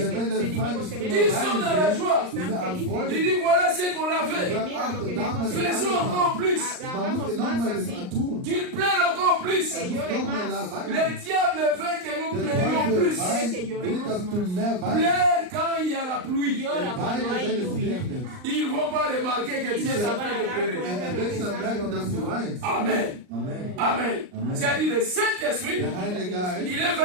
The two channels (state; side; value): late; left; 39 ms